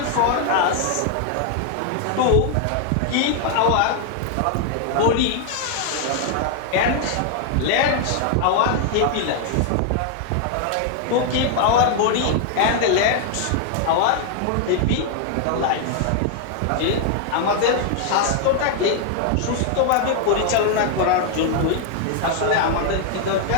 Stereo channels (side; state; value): both; different; correlation 0.00